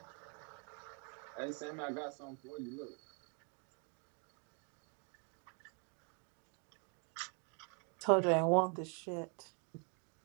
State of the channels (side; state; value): left; quieter; 37.3 dB